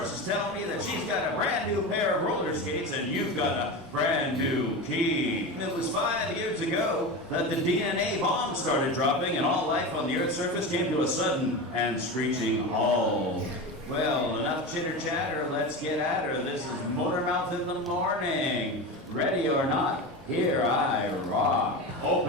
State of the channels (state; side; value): normal; both; correlation 0.24